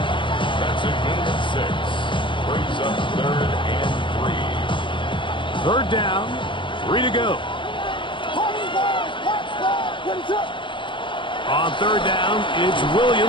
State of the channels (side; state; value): right; late; 0.24 ms